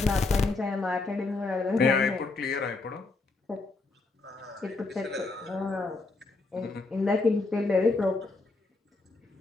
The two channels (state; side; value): quieter; right; 3.6 dB